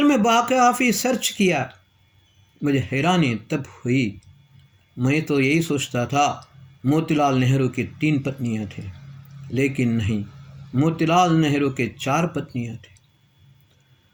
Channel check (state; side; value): identical; both; correlation 1.00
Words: में काफ़ी सर्च किया, मुझे हैरानी तब हुई। मैं तो यही सोचता था मोतीलाल नेहरू की 3 पत्नियां थी, लेकिन नहीं, मोतीलाल नेहरू के 4 पत्नियां थी।